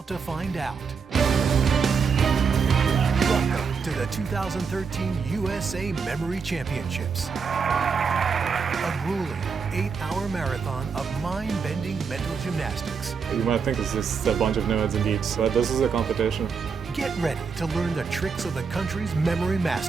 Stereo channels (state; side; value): quieter; left; 5.7 dB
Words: to find out. Welcome to the 2013 USA Memory Championships. A grueling 8-hour marathon of mind-bending mental gymnastics. You might think it's just a bunch of nerds and geeks, but this is a competition. Get ready to learn the tricks of the country's memory